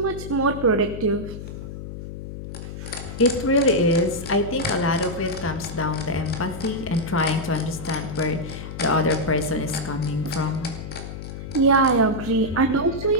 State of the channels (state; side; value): noise; left; hum, 10 dB below the sound